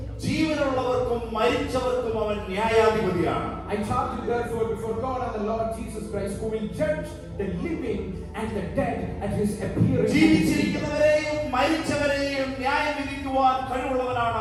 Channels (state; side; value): identical; both; correlation 1.00